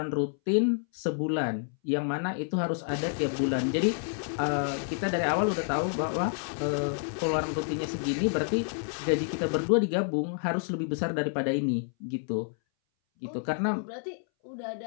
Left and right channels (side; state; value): right; silent; 58 dB below the other